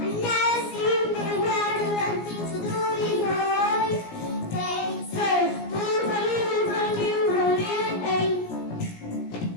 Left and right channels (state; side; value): late; right; 17 ms